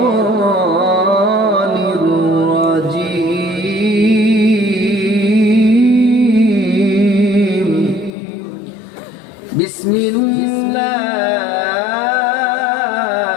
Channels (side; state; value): right; drops out; at 8.1 s